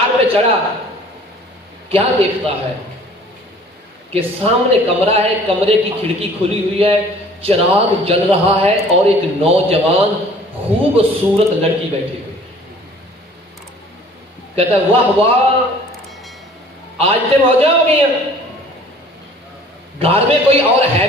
پہ چڑھا، کیا دیکھتا ہے کہ سامنے کمرہ ہے، کمرے کی کھڑکی کھلی ہوئی ہے، چراغ جل رہا ہے اور ایک نوجوان خوبصورت لڑکی بیٹھی ہوئی۔ کہتا ہے واہ واہ، آج سے موجہ ہو گئی ہیں، گھر میں کوئی اور ہے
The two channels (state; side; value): normal; both; correlation 0.51